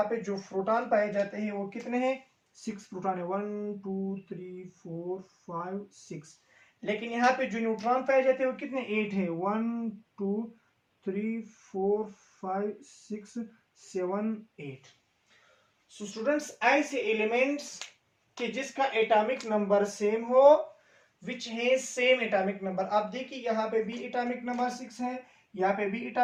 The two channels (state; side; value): identical; both; correlation 1.00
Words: पे जो प्रोटॉन पाए जाते हैं वो कितने हैं? 6 प्रोटॉन है। 1 2 3 4 5 6। लेकिन यहाँ पे जो न्यूट्रॉन पाए जाते हैं वो कितने? 8 है। 1 2 3 4 5 6 7 8। सो स्टूडेंट्स, ऐसे एलिमेंट्स कि जिसका एटॉमिक नंबर सेम हो, विच है सेम एटॉमिक नंबर। आप देखिए यहाँ पे भी एटॉमिक नंबर 6 है, यहाँ पे भी